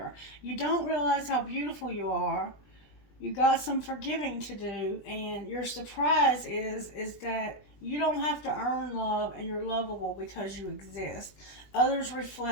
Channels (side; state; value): right; late; 20 ms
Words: You don't realize how beautiful you are. You got some forgiving to do, and your surprise is that you don't have to earn love, and you're lovable because you exist. Others